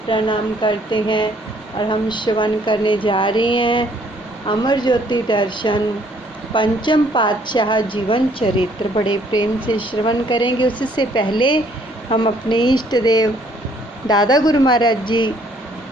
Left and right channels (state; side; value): normal; both; correlation 0.63